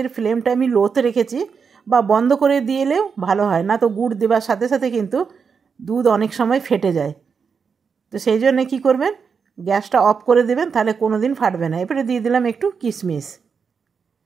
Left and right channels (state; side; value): quieter; left; 5.9 dB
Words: ফ্লেমটা আমি লোতে রেখেছি, বা বন্ধ করে দিলেও ভালো হয়, না তো গুড় দেওয়ার সাথে সাথে কিন্তু দুধ অনেক সময় ফেটে যায়। তো সেই জন্যে কী করবেন, গ্যাসটা অফ করে দেবেন, তাহলে কোনো দিন ফাটবে না। এরপরে দিয়ে দিলাম একটু কিশমিশ।